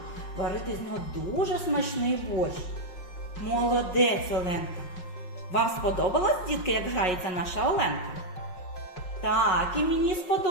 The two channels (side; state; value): right; late; 5.5 ms